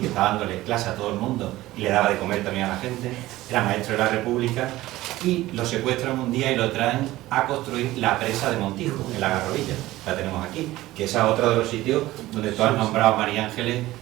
estaba dándole clase a todo el mundo y le daba de comer también a la gente. Era maestro de la República y lo secuestran un día y lo traen a construir la presa de Montijo, en la Garrovilla. La tenemos aquí, que es otro de los sitios donde tú has nombrado, María Ángeles,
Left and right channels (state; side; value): quieter; left; 16.9 dB